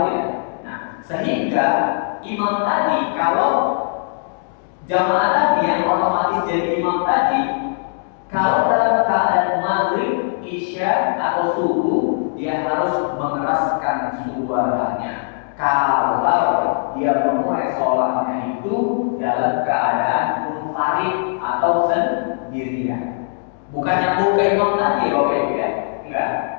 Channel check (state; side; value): silent; right; digital silence